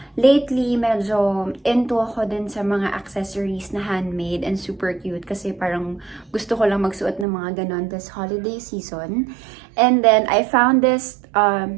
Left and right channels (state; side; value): drops out; left; at 7.2 s